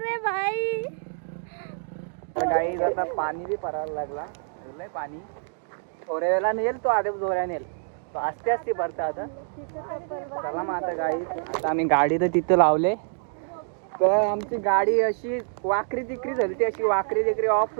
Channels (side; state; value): left; silent; digital silence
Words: रे भाई. गाईज आता पाणी बी परायला लागला लय पाणी थोड्या वेळा नेल तो आधी जोऱ्या नेल तो आस्ते आस्ते भरता आता. चला मग आता गाई आता आम्ही गाडी तर तिथं लावले तर आमची गाडी अशी वाकरी तिकरी झाली ती अशी वाकरी तिकरी ऑफ